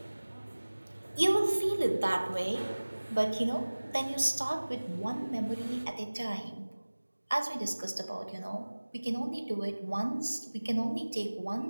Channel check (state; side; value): inverted; both; correlation -1.00